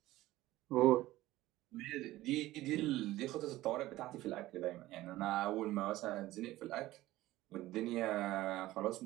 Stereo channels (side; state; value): left; quieter; 16.6 dB